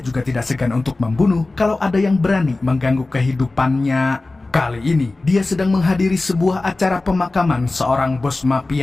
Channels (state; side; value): quieter; right; 3.2 dB